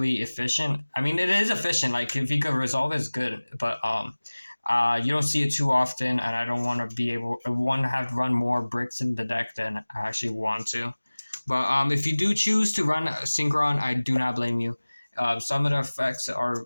efficient. I mean, it is efficient. Like, if you could resolve it, it's good. But you don't see it too often, and I don't want to have to run more bricks in the deck than I actually want to. But if you do choose to run Synchron, I do not blame you. Some of the effects are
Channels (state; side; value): inverted; both; correlation -1.00